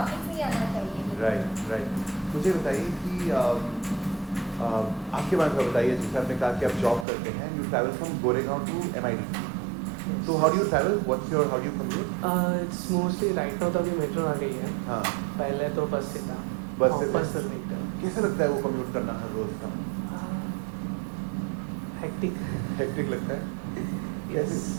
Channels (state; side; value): drops out; left; at 7.1 s